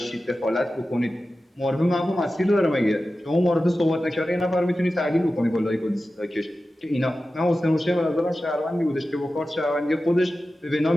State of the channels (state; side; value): normal; both; correlation 0.94